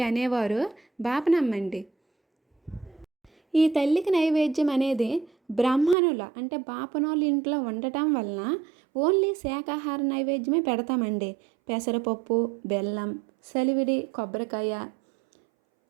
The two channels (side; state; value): left; drops out; at 6.0 s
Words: అనేవారు బాపనమ్మండి. ఈ తల్లికి నైవేద్యం అనేది బ్రాహ్మణుల అంటే బాపనోళ్ళ ఇంట్లో ఉండటం వలన ఓన్లీ శాకాహార నైవేద్యమే పెడతామండి. పెసరపప్పు, బెల్లం, సలివిడి, కొబ్బరికాయ,